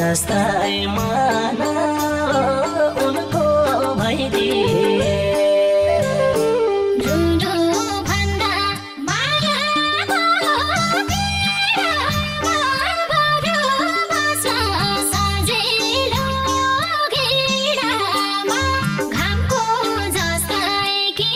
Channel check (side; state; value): both; identical; correlation 1.00